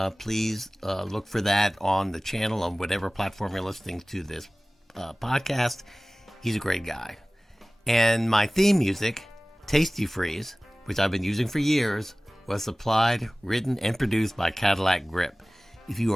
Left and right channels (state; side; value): normal; both; correlation 0.98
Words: please look for that on the channel on whatever platform you're listening to this podcast. He's a great guy. And my theme music, Tasty Freeze, which I've been using for years, was supplied, written, and produced by Cadillac Grip. If you